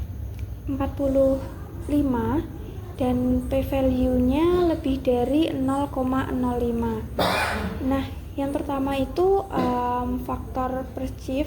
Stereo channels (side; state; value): both; identical; correlation 1.00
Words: dan p-value-nya lebih dari 0,05. Nah, yang pertama itu faktor